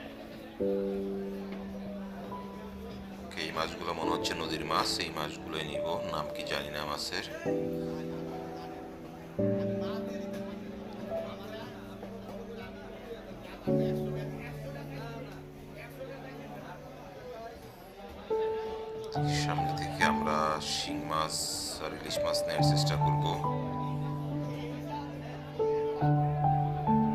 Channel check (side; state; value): both; identical; correlation 1.00